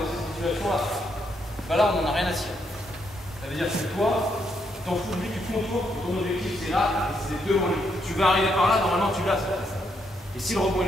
cette situation-là. Bah là, on n'en a rien à cirer. Ça veut dire que toi, tu t'en fous de lui, tu contours, ton objectif c'est là, et c'est devant lui. Tu vas arriver par là, normalement tu l'as. Et si le rebond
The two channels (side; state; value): both; normal; correlation 0.77